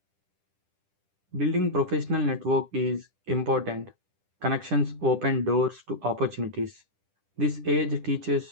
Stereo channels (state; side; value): late; left; 10 ms